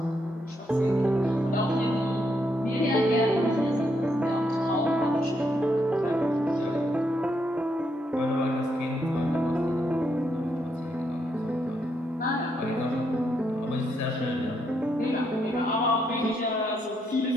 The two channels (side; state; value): both; normal; correlation 0.77